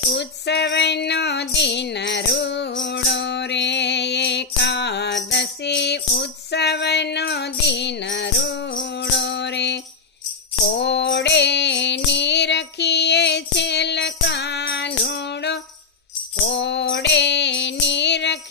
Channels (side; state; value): right; quieter; 4.7 dB